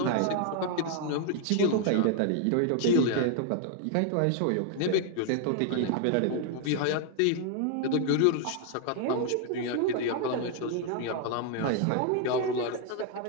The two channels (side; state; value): both; different; correlation 0.00